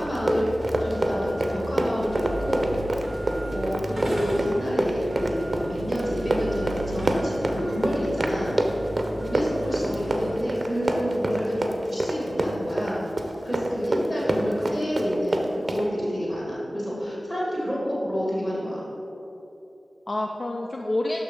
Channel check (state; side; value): normal; both; correlation 0.96